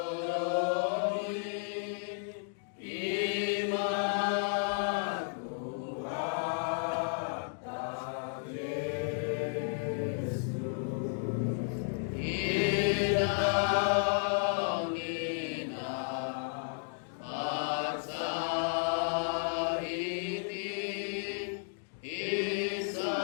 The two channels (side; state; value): right; silent; digital silence